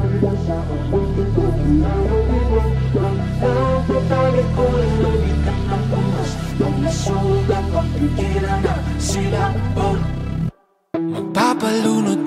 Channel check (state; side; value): identical; both; correlation 1.00